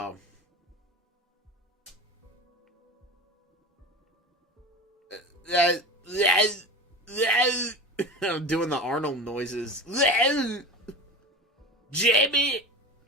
I'm doing the Arnold noises. Jamie,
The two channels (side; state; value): both; normal; correlation 0.29